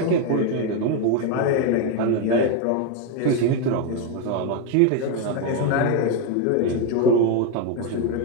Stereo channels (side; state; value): both; different; correlation 0.02